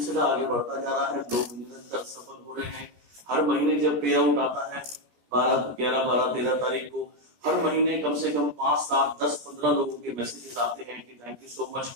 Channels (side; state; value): left; late; 16 ms